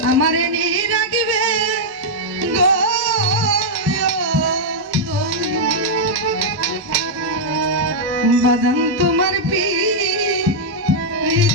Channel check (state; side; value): normal; both; correlation -0.05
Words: আমারে নি রাখবে গো বাদাম তোমার পীড়িতের